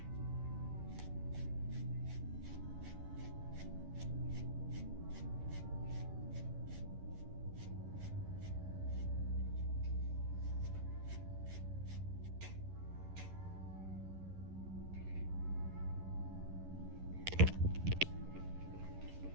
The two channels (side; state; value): left; late; 11 ms